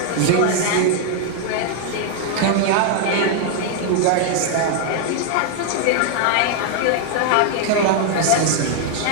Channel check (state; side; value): different; both; correlation 0.00